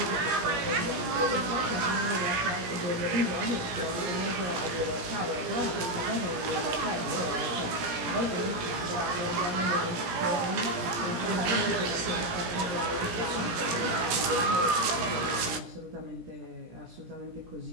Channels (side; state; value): left; late; 17 ms